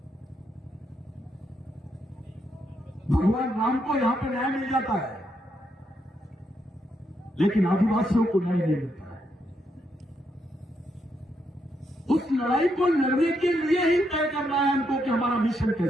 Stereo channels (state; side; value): normal; both; correlation 0.79